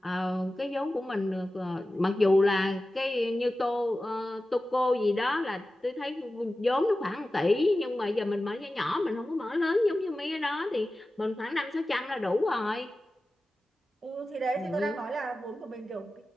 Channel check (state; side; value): normal; both; correlation 0.94